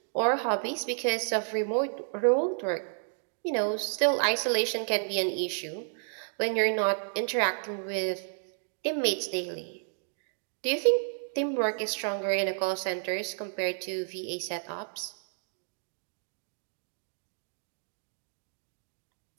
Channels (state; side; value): silent; left; digital silence